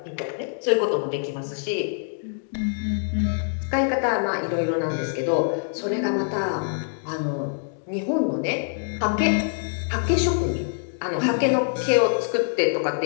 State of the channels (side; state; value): right; silent; digital silence